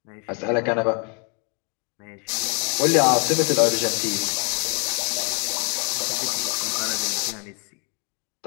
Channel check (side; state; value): right; quieter; 36.8 dB